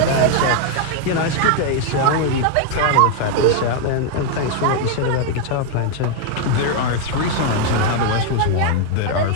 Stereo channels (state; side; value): different; both; correlation 0.00